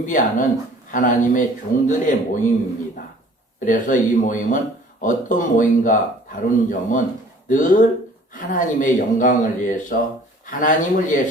하나님의 종들의 모임입니다. 그래서 이 모임은 어떤 모임과 다른 점은 늘 하나님의 영광을 위해서 하나님을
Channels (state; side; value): normal; both; correlation 0.51